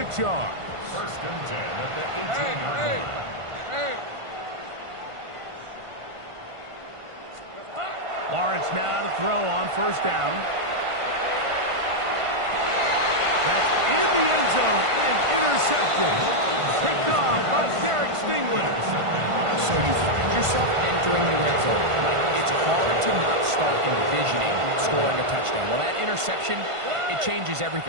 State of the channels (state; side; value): late; left; 1.5 ms